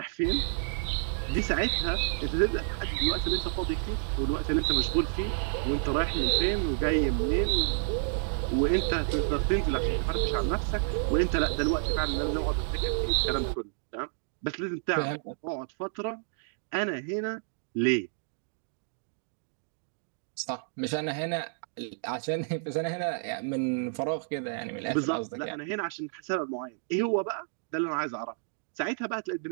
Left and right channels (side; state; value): left; silent; digital silence